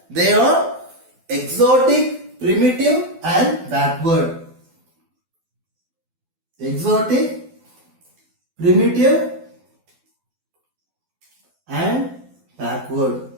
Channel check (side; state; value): left; late; 12 ms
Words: they are exotic, primitive and backward. Exotic, primitive and backward.